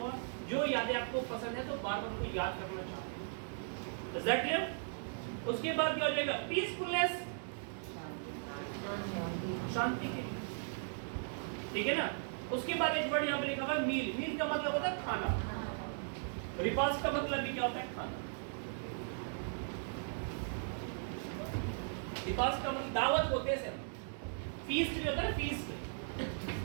जो यादें आपको पसंद है तो बार-बार उनको याद करना चाहते हैं। Is that clear? उसके बाद क्या हो जाएगा? पीसफुलनेस, शांति के लिए, ठीक है ना? उसके बाद एक वर्ड यहाँ पे लिखा हुआ है मील। मील का मतलब होता है खाना। रिपास का मतलब भी क्या होता है? खाना। रिपास का मतलब दावत होते हैं सर। फीस्ट भी होता है, फीस्ट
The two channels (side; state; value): left; silent; 53 dB below the other